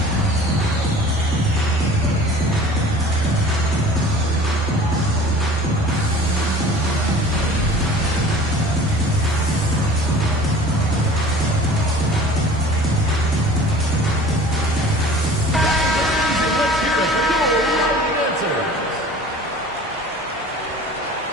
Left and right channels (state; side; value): normal; both; correlation 0.44